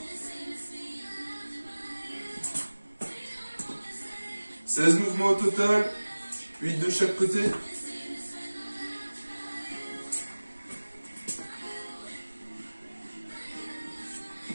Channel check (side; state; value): both; inverted; correlation -1.00